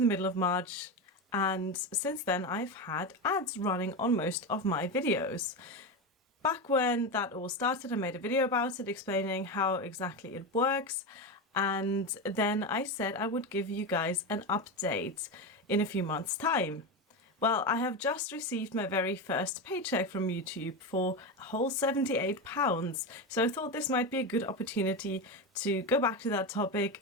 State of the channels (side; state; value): both; normal; correlation 0.16